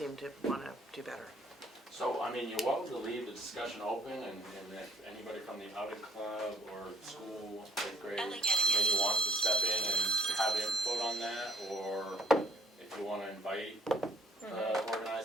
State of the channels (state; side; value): normal; both; correlation 0.62